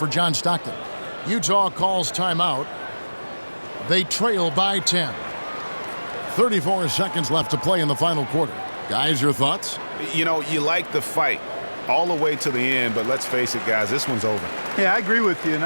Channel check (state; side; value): inverted; both; correlation -1.00